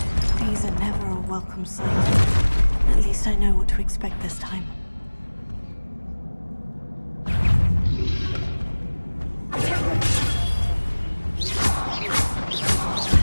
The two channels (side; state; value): both; inverted; correlation -1.00